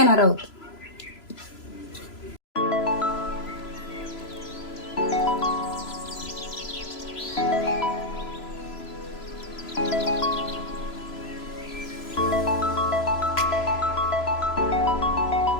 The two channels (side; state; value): right; late; 3.0 ms